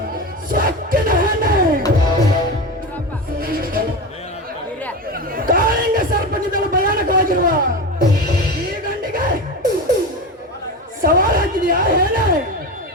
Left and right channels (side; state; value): both; normal; correlation 0.23